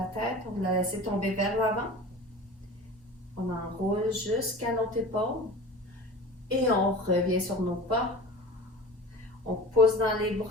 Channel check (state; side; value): normal; both; correlation 0.37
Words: tête. On va la laisser tomber vers l'avant. On enroule jusqu'à notre épaule. Et on revient sur nos pas. On pousse dans les